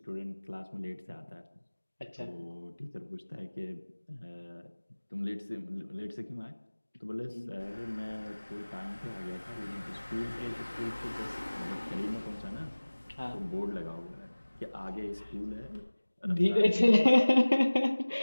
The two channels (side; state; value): both; inverted; correlation -1.00